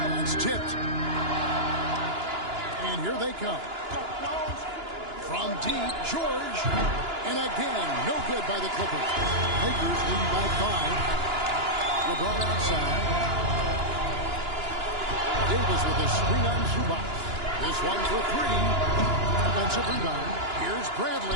That's tipped. And here they come. From deep, George. And again, no good by the Clippers. Lakers lead by 5. LeBron outside. Davis with a screen on Zubac. This one for 3. Offensive rebound. Here's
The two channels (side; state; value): left; late; 2.9 ms